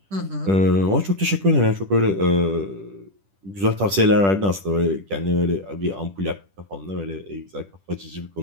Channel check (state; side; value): late; left; 10 ms